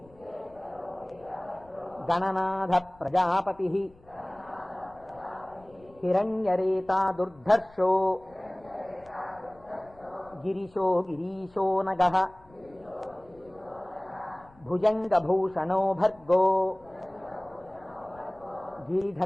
గణనాథ ప్రజాపతిః హిరణ్యరేతా దుర్ధర్షో గిరిశో గిరీశో నగః భుజంగభూషణో భర్గో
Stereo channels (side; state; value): left; noise; rumble, 27 dB below the sound